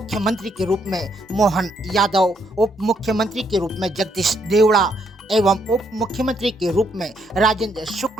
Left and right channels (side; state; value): both; normal; correlation 0.73